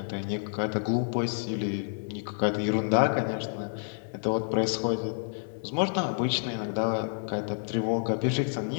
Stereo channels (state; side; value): silent; right; digital silence